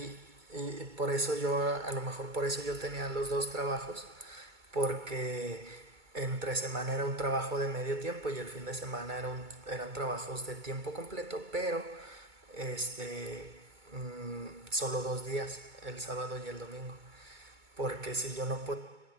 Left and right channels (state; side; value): late; left; 2.2 ms